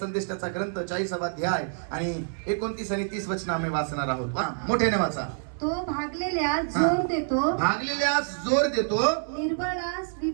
ग्रंथ 40वा अध्याय आणि 29 आणि 30 वचन आम्ही वाचणार आहोत. मोठ्याने वाचा. तो भागलेल्यास जोर देतो, भागलेल्यास जोर देतो, निर्बळास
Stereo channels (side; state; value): left; silent; 60 dB below the other